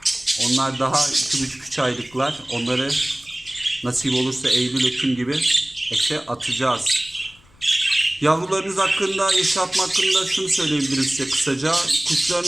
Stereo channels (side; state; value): left; noise; rumble, 28 dB below the sound